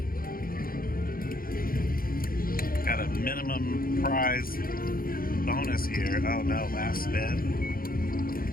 Got a minimum prize bonus here. Oh no, last spin.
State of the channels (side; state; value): right; late; 0.42 ms